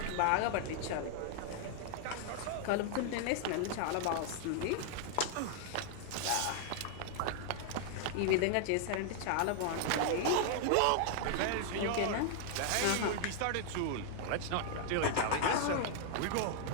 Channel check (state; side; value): different; both; correlation 0.00